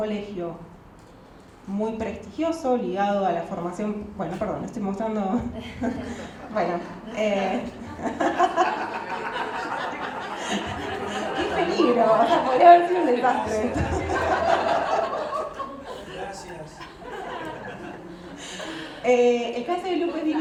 muy prestigioso, ligado a la formación... Bueno, perdón, estoy mostrando... Bueno... ¡Qué peligro! O sea, podría haber sido un desastre. Gracias. El caso de Lupe es bien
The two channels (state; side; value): identical; both; correlation 1.00